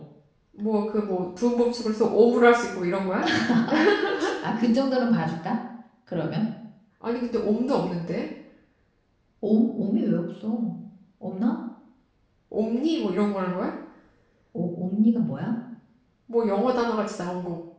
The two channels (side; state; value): both; identical; correlation 1.00